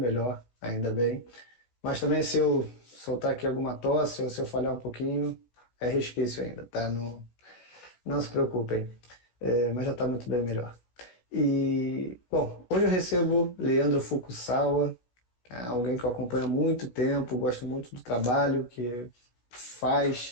ainda bem. Mas também se eu soltar aqui alguma tosse ou se eu falhar um pouquinho, é resquício ainda, tá? Não, não se preocupem. Mas já está muito bem melhor. E, bom, hoje eu recebo Leandro Fukusawa, alguém que eu acompanho há muito tempo, gosto muito do trabalho que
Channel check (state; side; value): late; right; 16 ms